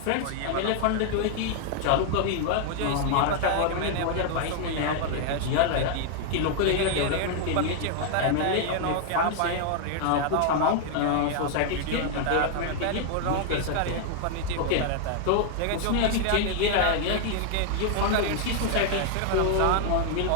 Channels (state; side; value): different; both; correlation 0.00